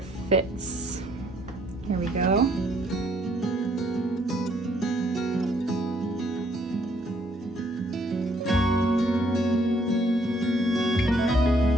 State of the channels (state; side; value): normal; both; correlation 0.66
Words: fits. Here we go.